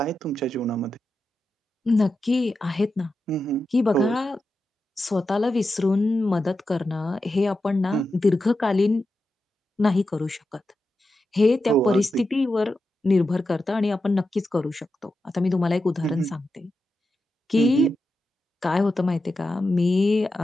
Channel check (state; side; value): normal; both; correlation 0.89